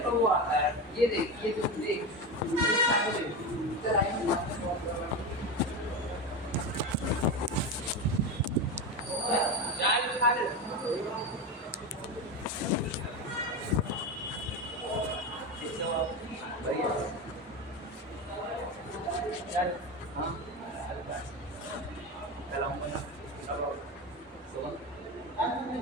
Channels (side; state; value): both; normal; correlation 0.19